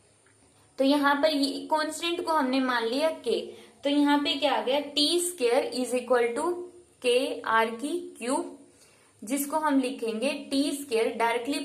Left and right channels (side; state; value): both; identical; correlation 1.00